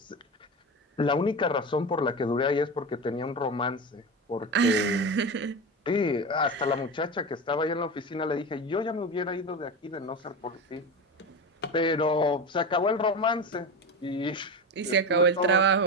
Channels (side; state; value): both; normal; correlation 0.23